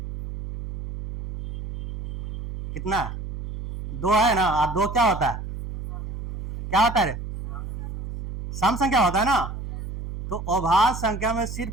कितना? 2 है ना। 2 क्या होता है? क्या होता है रे? सम संख्या होता है ना। तो अभाज्य संख्या में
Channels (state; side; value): noise; right; hum, 8 dB below the sound